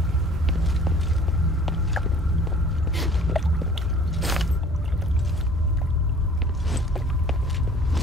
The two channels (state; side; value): normal; both; correlation 0.50